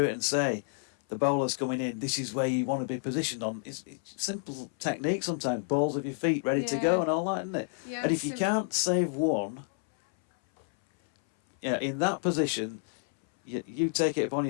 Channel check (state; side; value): silent; right; 58 dB below the other